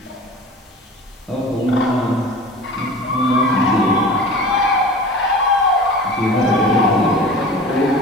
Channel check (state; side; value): normal; both; correlation 0.38